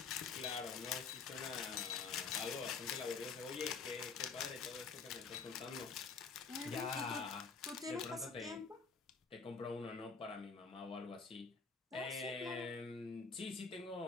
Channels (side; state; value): right; quieter; 5.0 dB